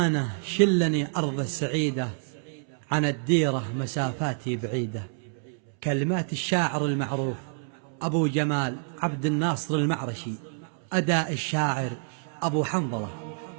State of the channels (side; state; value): left; silent; 60 dB below the other